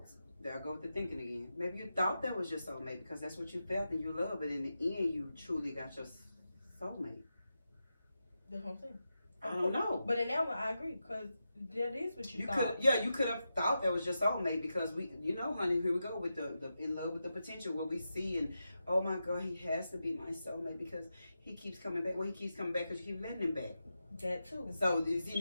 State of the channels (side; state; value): both; inverted; correlation -0.89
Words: there I go with the thinking again, maybe you thought that was your soulmate because that's what you felt and you loved, but in the end, you truly got your soulmate. That's what I'm saying. I don't know. But in that one, I agree because that is what you thought. You could have thought that was your soulmate because we, you know, honey, here we go with the in love with the potential where we see and, oh my God, he has to be my soulmate because he keeps coming back. Well, he keeps coming back because you keep letting him back. That too. So is he